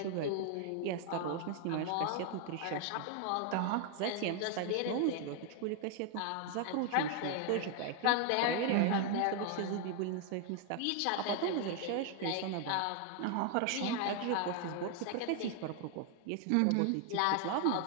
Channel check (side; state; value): both; different; correlation 0.00